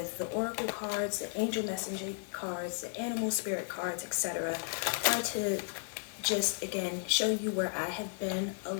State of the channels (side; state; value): right; silent; 55 dB below the other